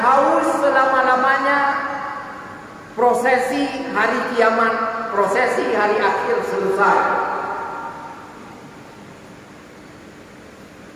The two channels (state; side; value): identical; both; correlation 1.00